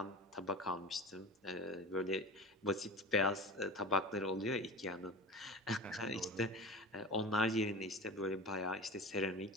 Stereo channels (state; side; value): normal; both; correlation 0.32